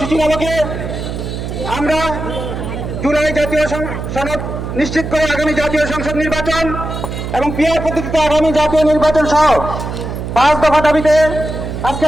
আলোকে আমরা জুলাই জাতীয় সনদ নিশ্চিত করে আগামী জাতীয় সংসদ নির্বাচন এবং পিআর পদ্ধতিতে আগামী জাতীয় নির্বাচন সহ ৫ দফা দাবিতে আজকে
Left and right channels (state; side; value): noise; right; hum, 6 dB below the sound